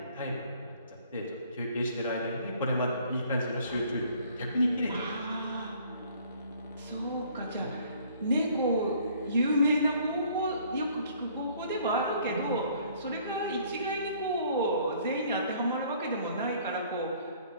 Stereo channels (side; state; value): both; inverted; correlation -0.58